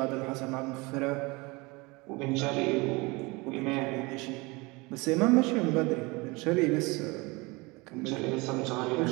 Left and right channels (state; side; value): quieter; left; 25.2 dB